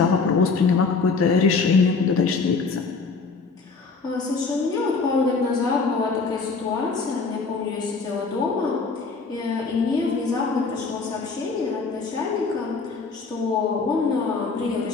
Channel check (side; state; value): right; quieter; 4.5 dB